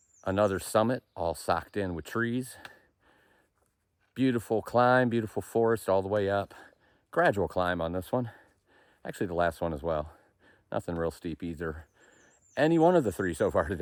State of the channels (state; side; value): identical; both; correlation 1.00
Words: Another summit all socked in with trees. Beautiful climb, beautiful forest all the way up. Gradual climb on this one. Actually the last one as well. Nothing real steep either. Any one of the three so far